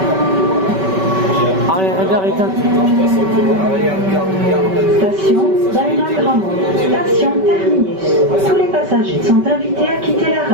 Arrière-regard éteint. Station Balma-Gramont. Station terminus. Tous les passagers sont invités à quitter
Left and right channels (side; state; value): left; late; 5.2 ms